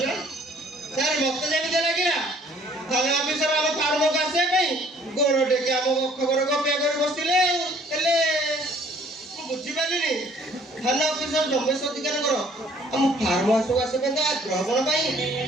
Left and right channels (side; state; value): both; normal; correlation 0.58